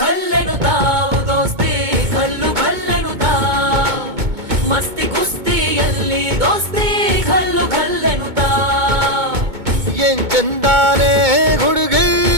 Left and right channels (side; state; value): left; late; 2.2 ms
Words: ಘಲ್ಲೆನುತಾವ್ ದೋಸ್ತಿ ಘಲ್ಲು ಘಲ್ಲೆನುತಾವ್ ಮಸ್ತಿ ಕುಸ್ತಿಯಲ್ಲಿ ದೋಸ್ತಿ ಘಲ್ಲು ಘಲ್ಲೆನುತಾವ್ ಏನ್ ಚಂದಾನೆ ಹುಡುಗಿ